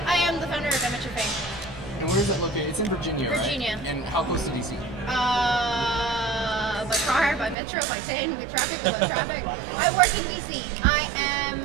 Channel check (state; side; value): drops out; left; at 7.6 s